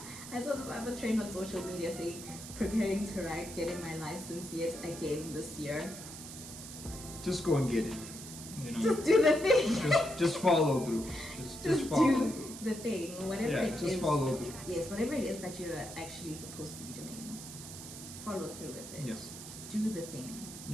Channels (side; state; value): right; noise; hiss, 12 dB below the sound